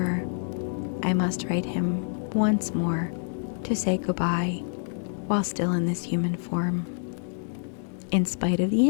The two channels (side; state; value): right; silent; digital silence